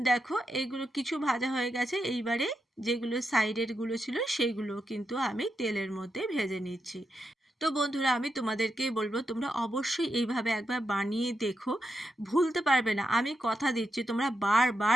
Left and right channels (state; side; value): normal; both; correlation 0.85